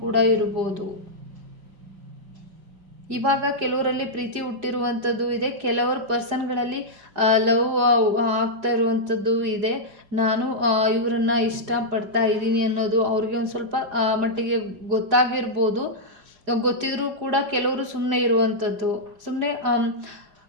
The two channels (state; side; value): late; left; 4.9 ms